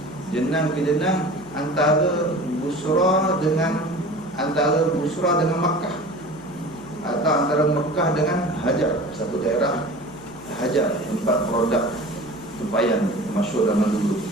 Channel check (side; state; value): right; noise; hum, 24 dB below the sound